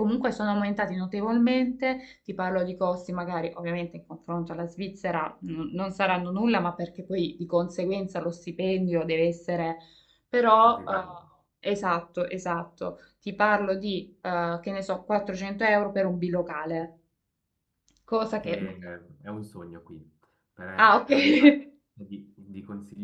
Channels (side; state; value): both; identical; correlation 1.00